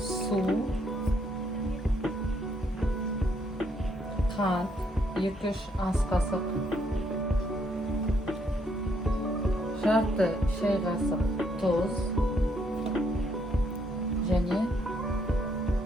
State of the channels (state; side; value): normal; both; correlation 0.72